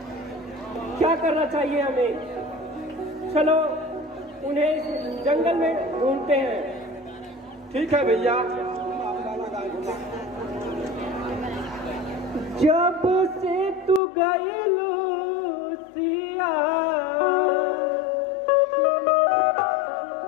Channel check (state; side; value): drops out; right; at 14.0 s